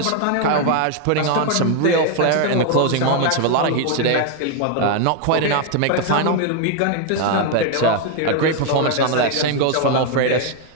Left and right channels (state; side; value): different; both; correlation 0.01